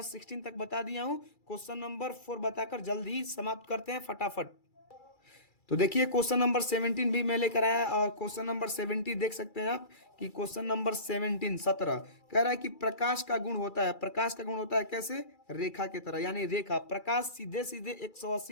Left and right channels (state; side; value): late; right; 2.3 ms